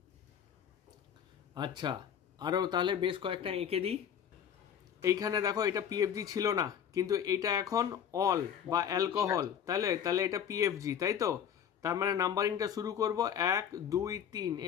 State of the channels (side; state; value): right; quieter; 8.7 dB